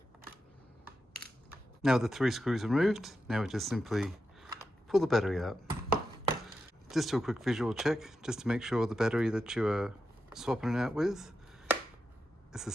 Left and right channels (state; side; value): normal; both; correlation 0.88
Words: Now with the 3 screws removed, now we just simply pull the battery out. Just do a quick visual check, just to make sure the battery that you are swapping it out with is the